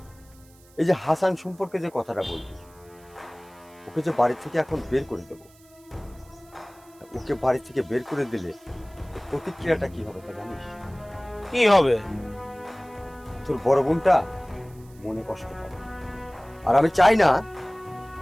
এই যে হাসান সম্পর্কে যে কথাটা বললি, ওকে যে বাড়ি থেকে এখন বের করে দেবো, ওকে বাড়ি থেকে বের করে দিলে তোর প্রতিক্রিয়াটা কি হবে তা জানিস? কি হবে? তোর বড় বোনটা মনে কষ্ট পাবে, আর আমি চাই না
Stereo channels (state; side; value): noise; right; hiss, 28 dB below the sound